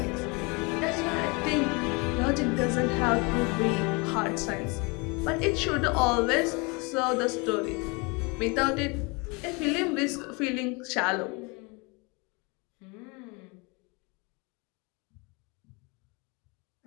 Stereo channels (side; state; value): right; quieter; 29.2 dB